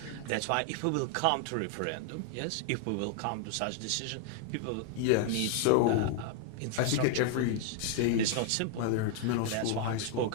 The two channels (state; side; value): different; both; correlation 0.00